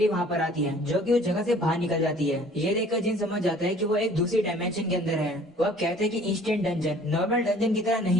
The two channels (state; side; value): normal; both; correlation 0.52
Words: वहाँ पर आती है जो कि उस जगह से बाहर निकल जाती है। ये देखकर जिन समझ जाता है कि वो एक दूसरी डायमेंशन के अंदर है। वो अब कहते हैं कि इंस्टेंट डंजन नॉर्मल डंजन की तरह